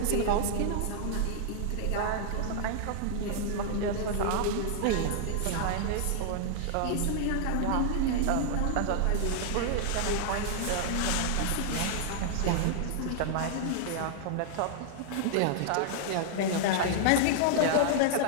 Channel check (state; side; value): different; both; correlation -0.01